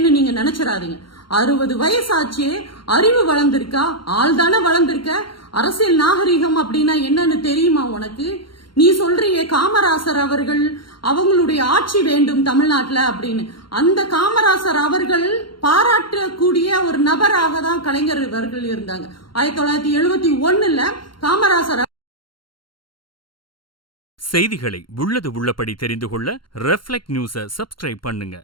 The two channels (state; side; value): late; right; 0.73 ms